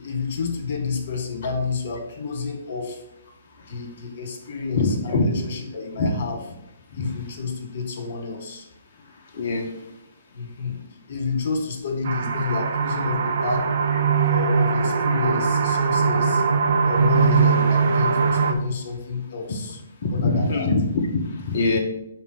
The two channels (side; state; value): both; inverted; correlation -0.62